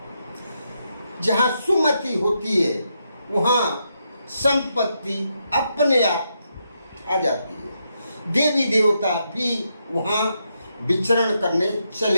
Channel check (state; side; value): inverted; both; correlation -0.81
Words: जहां सुमति होती है वहां संपत्ति अपने आप आ जाती है। देवी देवता भी वहां विचरण करने